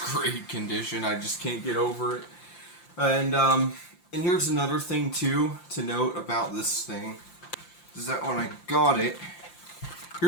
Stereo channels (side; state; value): right; late; 5.8 ms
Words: great condition. I just can't get over it. And here's another thing too to note about this thing is that when I got it,